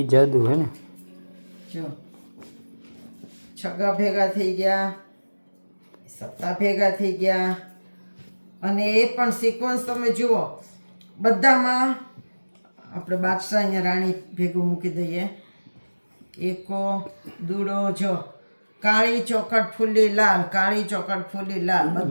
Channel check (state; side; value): inverted; both; correlation -1.00